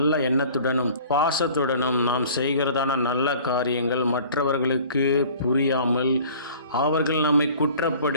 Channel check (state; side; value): inverted; both; correlation -0.47